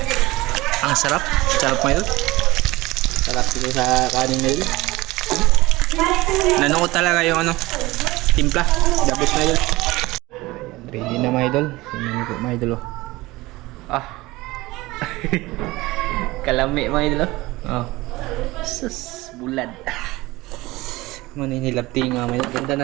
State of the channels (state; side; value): quieter; left; 20.1 dB